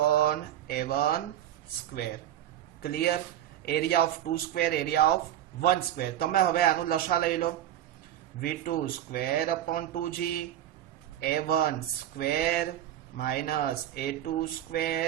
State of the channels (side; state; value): left; quieter; 11.9 dB